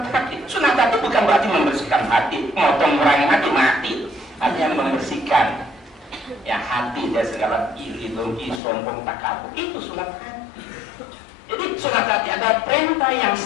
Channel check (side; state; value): right; drops out; at 8.6 s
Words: hati. Sunat hati bukan berarti membersihkan hati, motong orang hati mati. Artinya membersihkan. Ya hati dari segala iri, dengki, sombong, takabur. Itu sunat hati. Jadi sunat hati ada perintah yang